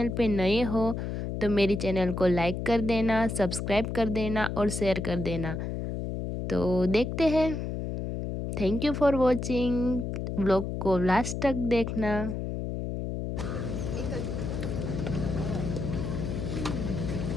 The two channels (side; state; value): left; noise; hum, 4 dB below the sound